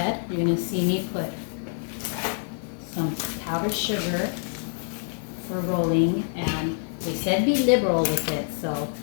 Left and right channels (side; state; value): right; silent; 61 dB below the other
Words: You're gonna see me put some powdered sugar for rolling, and they said be liberal with it, so